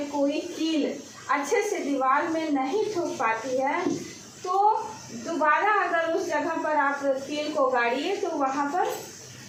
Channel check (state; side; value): identical; both; correlation 1.00